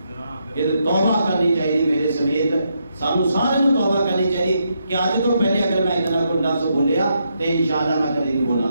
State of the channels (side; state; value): both; inverted; correlation -0.80